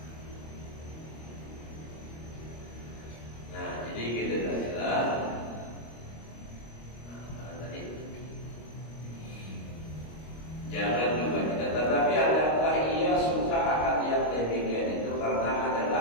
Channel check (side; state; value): right; late; 25 ms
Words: Nah jadi kita adalah jangan juga tidak, tetapi adakah ia suka akan yang demikian itu karena